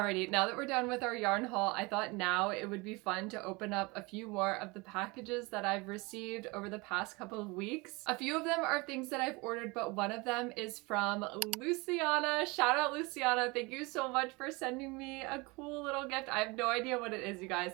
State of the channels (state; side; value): quieter; left; 25.7 dB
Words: now that we're done with our yarn haul, I thought now it would be fun to open up a few more of the packages that I've received over the past couple of weeks. A few of them are things that I've ordered, but one of them is from Luciana. Shout out Luciana. Thank you so much for sending me a cool little gift. I have no idea what it is, you